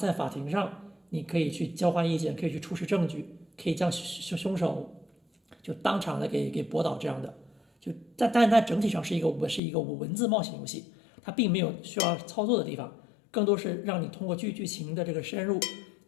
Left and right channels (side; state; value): right; drops out; at 9.6 s